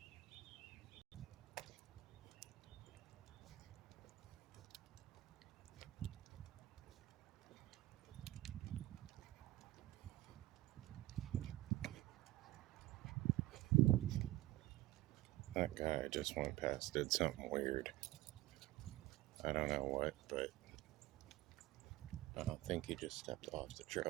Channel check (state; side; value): quieter; left; 16.8 dB